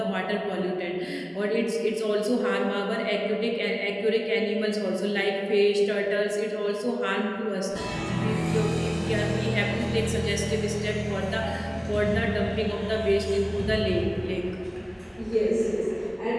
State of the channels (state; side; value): identical; both; correlation 1.00